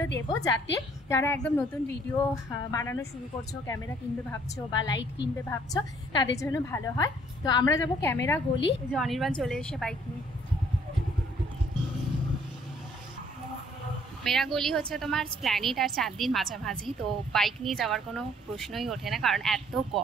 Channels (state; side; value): normal; both; correlation 0.61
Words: দেবো, যাতে যারা একদম নতুন ভিডিও বানানো শুরু করছো, ক্যামেরা কিনবে ভাবছো বা লাইট কিনবে ভাবছো, তাদের জন্য ভালো হয়। তো আমরা যাবো ক্যামেরা গলি। যে অনির্বাণ চলে এসে বাইক নিয়ে। ক্যামেরা গলি হচ্ছে তোমার স্প্ল্যানেড আর চাঁদনির মাঝামাঝি। তো বাইক নিয়ে যাওয়ার কোনো প্রশ্নই ওঠে না, কারণ এত